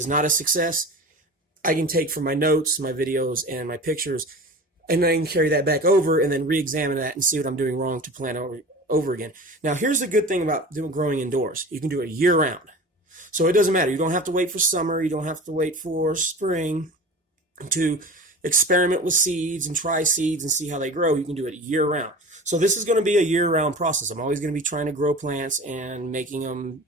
not a success, I can take from my notes, my videos, and my pictures, and I can carry that back over and then re-examine that and see what I'm doing wrong to plan over again. Now, here's the good thing about growing indoors. You can do it year-round. So it doesn't matter. You don't have to wait for summer. You don't have to wait for spring to experiment with seeds and try seeds and see how they grow, you can do it year round. So this is going to be a year-round process. I'm always going to be trying to grow plants and making them,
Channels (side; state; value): both; normal; correlation 0.36